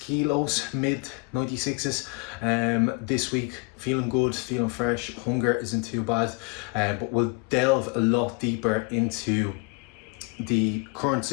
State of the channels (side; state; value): right; quieter; 31.5 dB